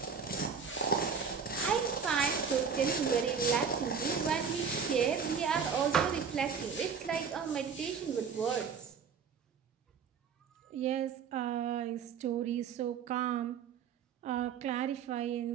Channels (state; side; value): quieter; left; 6.4 dB